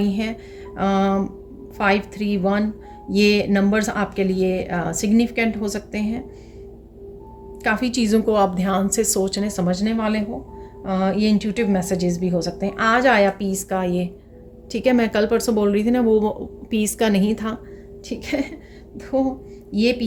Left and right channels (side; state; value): both; identical; correlation 1.00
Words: हैं। 5, 3, 1 ये नंबर्स आपके लिए सिग्निफिकेंट हो सकते हैं। काफ़ी चीज़ों को आप ध्यान से सोचने समझने वाले हो। ये इंट्यूटिव मैसेजेस भी हो सकते हैं। आज आया पीस का ये, ठीक है, मैं कल परसों बोल रही थी ना वो पीस का नहीं था। ठीक है, तो ये